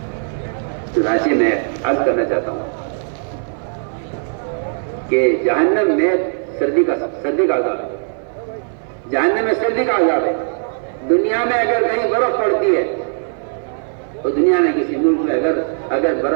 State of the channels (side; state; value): left; silent; 57 dB below the other